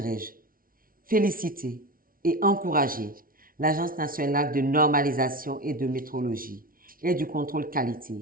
féliciter et encourager l'Agence nationale de normalisation et de métrologie et du contrôle qualité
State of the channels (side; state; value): left; late; 0.42 ms